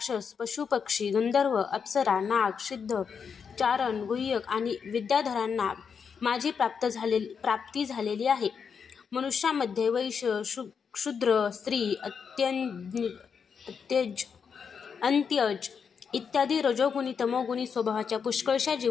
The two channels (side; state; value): right; quieter; 6.4 dB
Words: पशुपक्षी, गंधर्व, अप्सरा, नाग, सिद्ध, चारण, गुह्यक आणि विद्याधरांना माझी प्राप्ती झालेली आहे. मनुष्यामध्ये वैश्य, शूद्र, स्त्री, अंत्यज इत्यादी रजोगुणी, तमोगुणी स्वभावाच्या पुष्कळशा